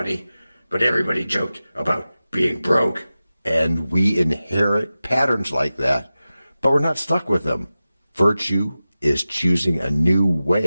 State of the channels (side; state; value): both; inverted; correlation -0.95